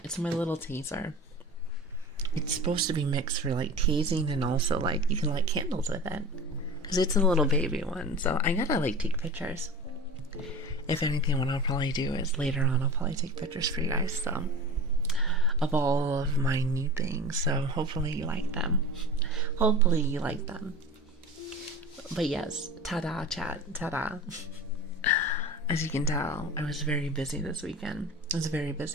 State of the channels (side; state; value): both; normal; correlation 0.34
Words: It's my little taser. It's supposed to be mixed for like tasing and also like you can light candles with it. Because it's a little baby one, so I gotta like take pictures. If anything, what I'll probably do is later on I'll probably take pictures for you guys, so of all of my new things. So hopefully you like them. Hopefully you like them. But yes, ta-da chat, ta-da. As you can tell, I was very busy this weekend. I was very